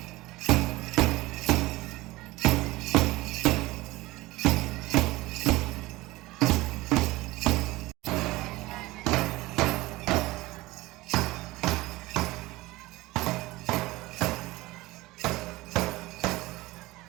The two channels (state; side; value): quieter; left; 19.8 dB